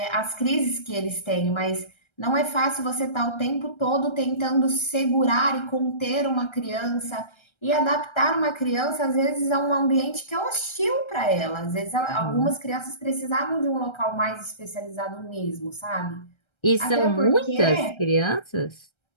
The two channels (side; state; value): right; late; 1.3 ms